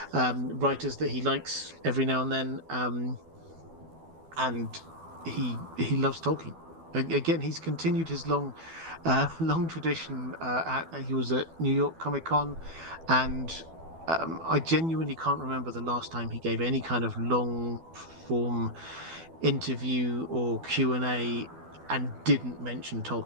writers that he likes every now and then, and he loves Tolkien. Again, he's continued his long tradition. He was at New York Comic Con, and I genuinely can't remember the last time he gave any kind of long form interview or Q&A and didn't mention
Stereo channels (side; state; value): left; late; 12 ms